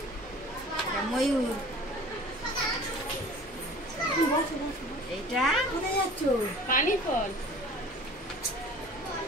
এটা ময়ূর, এটা পানি ফল,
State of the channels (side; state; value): both; normal; correlation 0.44